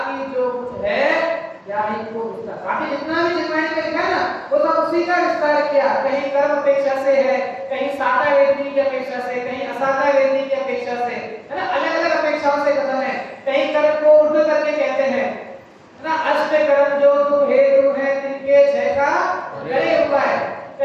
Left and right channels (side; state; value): both; identical; correlation 1.00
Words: जो कुछ है याही को विस्तार। बाकी जितना भी जिनवाणी में लिखा ना, वो सब उसी का विस्तार किया। कहीं कर्म अपेक्षा से है, कहीं साता वेदनी की अपेक्षा से, कहीं असाता वेदनी की अपेक्षा से, है ना, अलग अलग अपेक्षाओं से कथन है। कहीं कर्म को उर्ध करके कहते हैं ना, अष्ट कर्म जो तू हेतु है तिनके 6 का करे उपाय।